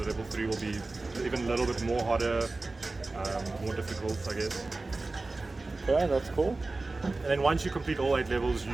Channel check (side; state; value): left; quieter; 3.3 dB